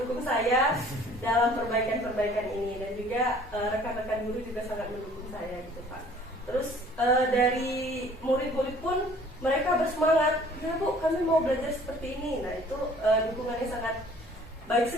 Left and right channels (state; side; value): normal; both; correlation 0.53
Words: saya dalam perbaikan-perbaikan ini, dan juga rekan-rekan guru juga sangat mendukung saya gitu Pak. Terus dari murid-murid pun mereka bersemangat, ya Bu kami mau belajar seperti ini. Nah itu dukungannya sangat baik